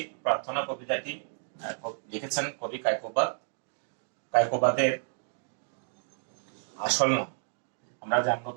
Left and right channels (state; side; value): silent; left; digital silence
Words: প্রার্থনা কবিতাটি লিখেছেন কবি কায়কোবাদ। কায়কোবাদের আসল নাম আমরা জানবো।